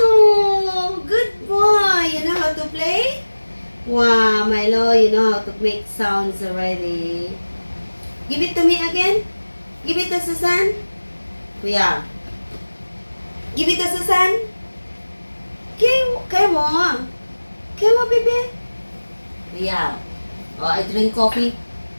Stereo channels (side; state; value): both; inverted; correlation -1.00